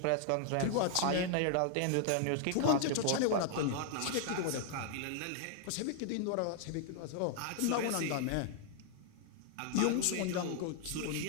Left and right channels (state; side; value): different; both; correlation 0.00